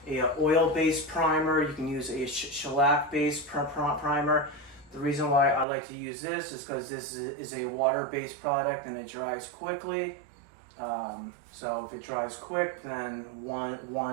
a oil-based primer. You can use a shellac-based primer. The reason why I like to use this is because this is a water-based product and it dries quickly. So if it dries quick, then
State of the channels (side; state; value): left; drops out; at 5.7 s